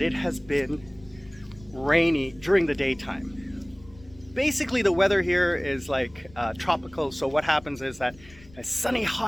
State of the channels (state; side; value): noise; left; rumble, 23 dB below the sound